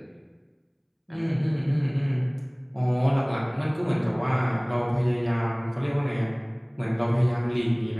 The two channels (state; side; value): identical; both; correlation 1.00